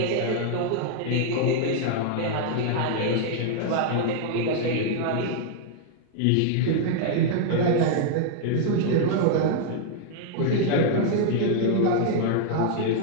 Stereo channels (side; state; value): both; different; correlation 0.00